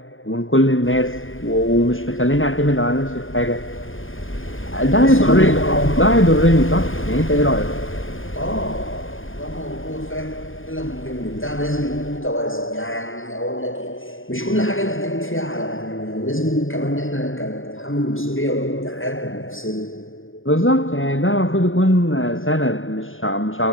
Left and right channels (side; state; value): right; late; 0.59 ms